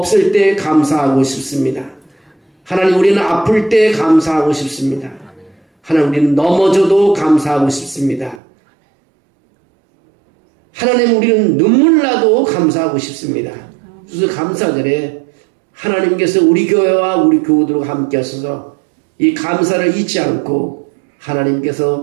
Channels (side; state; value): left; drops out; at 8.4 s